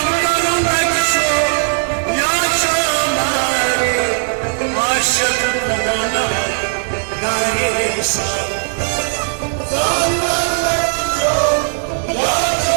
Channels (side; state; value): left; silent; 62 dB below the other